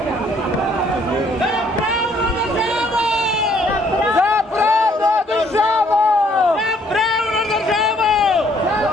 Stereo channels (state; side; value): normal; both; correlation 0.64